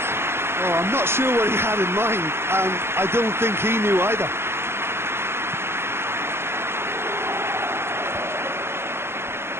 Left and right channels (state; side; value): late; left; 0.12 ms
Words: Oh, I'm not sure what he had in mind, and I don't think he knew either.